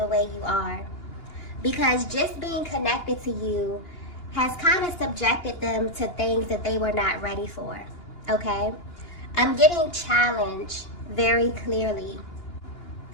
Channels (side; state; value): right; late; 2.9 ms